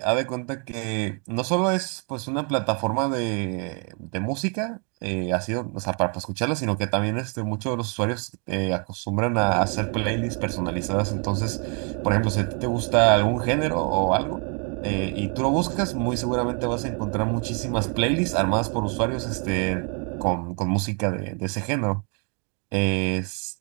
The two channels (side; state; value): left; quieter; 38.1 dB